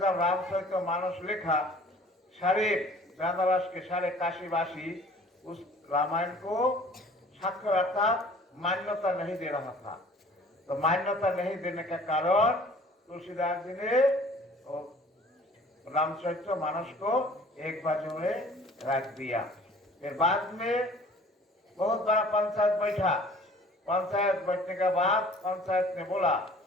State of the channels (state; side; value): normal; both; correlation 0.50